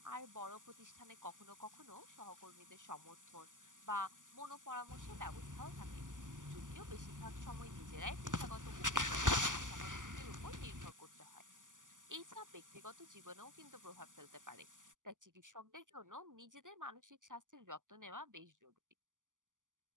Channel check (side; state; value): left; late; 0.87 ms